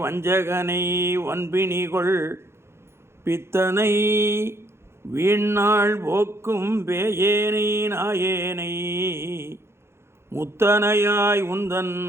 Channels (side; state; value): left; late; 0.12 ms